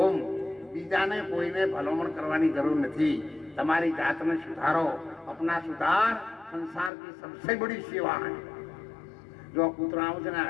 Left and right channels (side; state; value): right; drops out; at 6.9 s